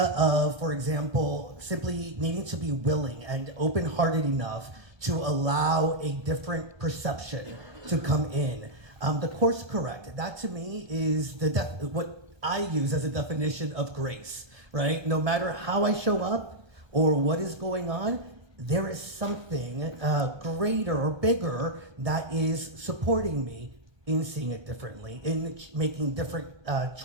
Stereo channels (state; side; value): late; left; 1.2 ms